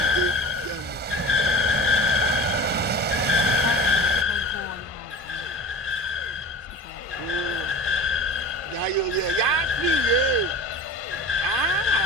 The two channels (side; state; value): both; normal; correlation 0.36